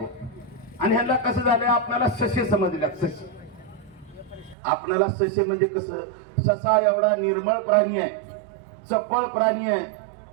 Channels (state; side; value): drops out; left; at 4.5 s